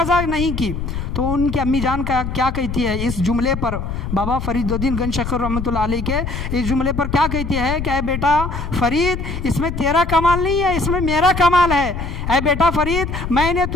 نہیں کی. تو ان کی امی جان کا کیا کہتی ہے اس جملے پر، بابا فرید الدین گنج شکر رحمۃ اللہ علیہ کے اس جملے پر کیا کہتی ہے کہ اے بیٹا فرید اس میں تیرا کمال نہیں ہے، اس میں میرا کمال ہے. اے بیٹا فرید میں نے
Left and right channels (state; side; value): noise; left; rumble, 5 dB below the sound